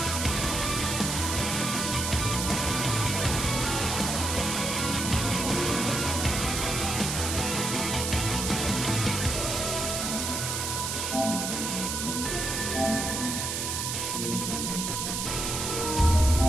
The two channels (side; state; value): right; noise; hiss, 2 dB below the sound